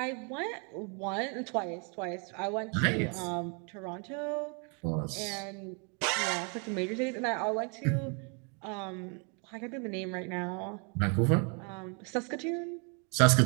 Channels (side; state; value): left; quieter; 36.8 dB